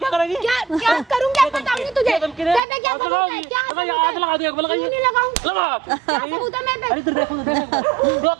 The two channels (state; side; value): drops out; left; at 2.6 s